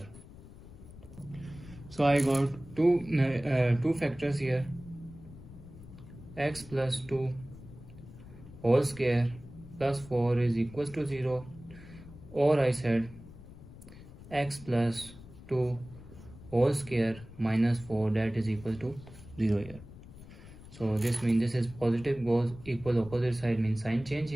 So I got two factors here, x plus 2 whole square plus 4 is equals to 0, or I said x plus 2 whole square minus 4, that is equal to 0 here. So this means this is positive goes equal opposite side means sign change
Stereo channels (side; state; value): left; noise; rumble, 17 dB below the sound